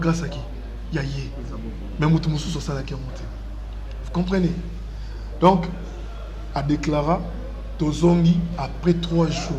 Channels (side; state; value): both; identical; correlation 1.00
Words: à qui? Yaye. Mais moutou moussou sur ça là qui est monté. Vous comprenez? Donc à déclarer Tozongi après 3 jours.